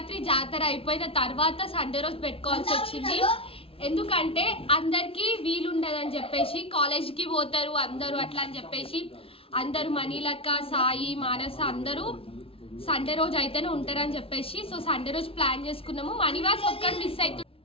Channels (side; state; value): right; late; 0.27 ms